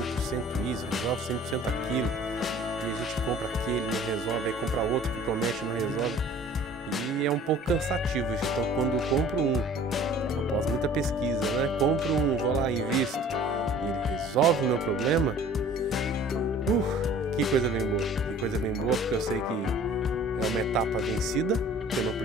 isso, resolve 100% aquilo. E a gente compra aquele, não resolve, aí compra outro que promete, não resolve. E é um pouco cansativo isso. Então quando eu compro após muita pesquisa, né? Compro vou lá, invisto, e ele resolve o meu problema. Que coisa bem boa. Que coisa bem boa, porque eu sei que é uma etapa vencida, que eu não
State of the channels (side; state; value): both; normal; correlation 0.49